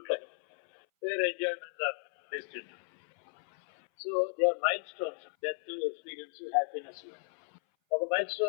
life, where enjoyments are destined. So they are milestones, death, experience, happiness. ఒక మైల్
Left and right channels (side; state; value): right; silent; 55 dB below the other